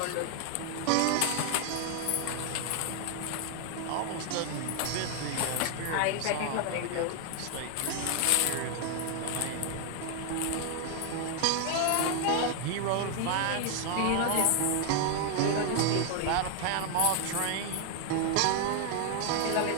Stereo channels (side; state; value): both; different; correlation 0.00